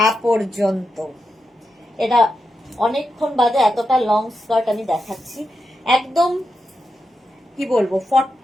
পর্যন্ত। এটা অনেকক্ষণ বাদে এতটা লং স্কার্ট আমি দেখাচ্ছি। একদম কি বলবো,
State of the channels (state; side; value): normal; both; correlation 0.87